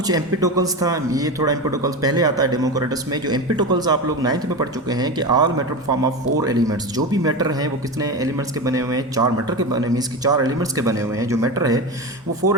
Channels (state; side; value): normal; both; correlation 0.22